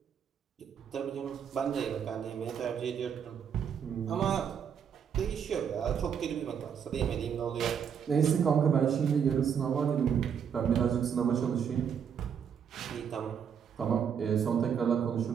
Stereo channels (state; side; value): quieter; left; 7.7 dB